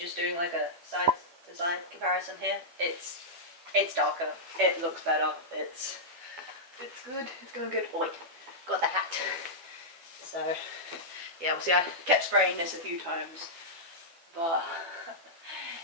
doing like a side to side comparison here, it's darker, it looks better, it's good, it's going good. Oh wait, got the hat. So yeah, we'll see. I kept spraying this a few times, but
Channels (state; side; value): late; left; 12 ms